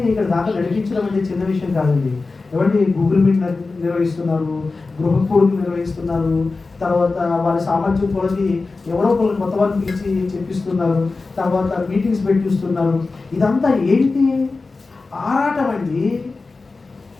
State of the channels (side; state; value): right; quieter; 3.8 dB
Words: ఇక్కడ దాకా నడిపించడం అంటే చిన్న విషయం కాదండి. ఏమంటే గూగుల్ మీట్ నిర్వహిస్తున్నారు, గృహ కూడుకులు నిర్వహిస్తున్నారు, తర్వాత వారి సామర్థ్యం కొలది ఎవరో ఒకరు కొత్త వారిని పిలిచి చెప్పిస్తున్నారు, తర్వాత మీటింగ్స్ పెట్టిస్తున్నారు. ఇదంతా ఏంటి? ఆరాటం అండి.